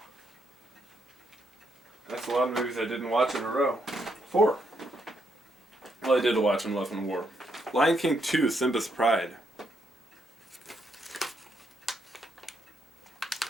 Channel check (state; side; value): normal; both; correlation 0.77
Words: That's a lot of movies I didn't watch in a row. 4. Well, I did watch in Love and War. Lion King 2, Simba's Pride.